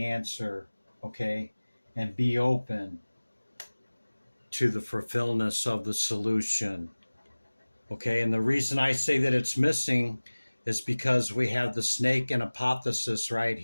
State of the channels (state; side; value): inverted; both; correlation -1.00